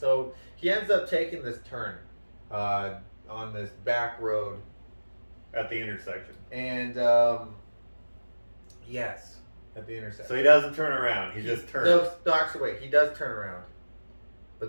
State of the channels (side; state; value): both; inverted; correlation -1.00